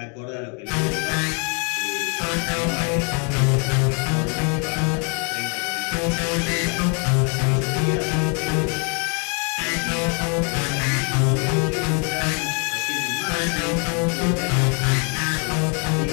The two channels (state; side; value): quieter; right; 37.5 dB